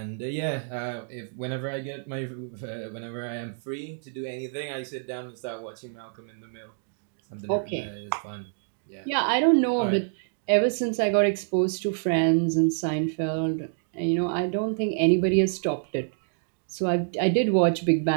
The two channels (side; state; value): left; silent; digital silence